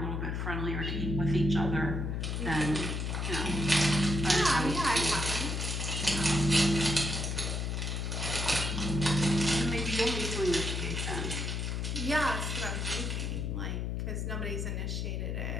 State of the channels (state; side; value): noise; left; hum, 2 dB below the sound